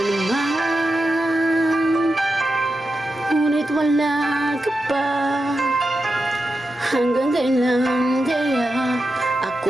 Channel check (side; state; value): both; normal; correlation 0.89